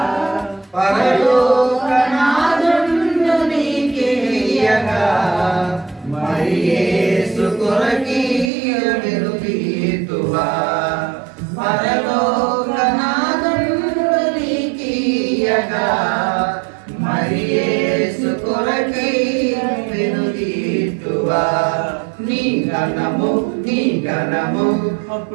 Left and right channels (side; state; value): left; drops out; at 8.5 s